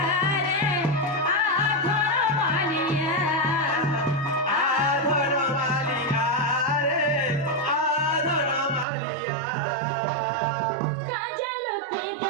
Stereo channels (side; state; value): left; drops out; at 8.8 s